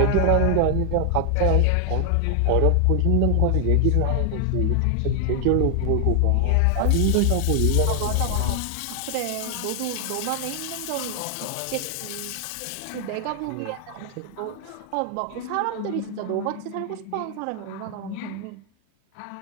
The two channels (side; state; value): both; different; correlation 0.00